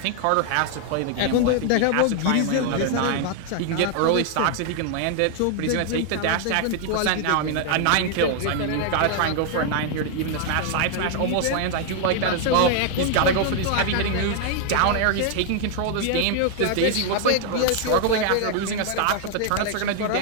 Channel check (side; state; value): both; different; correlation 0.00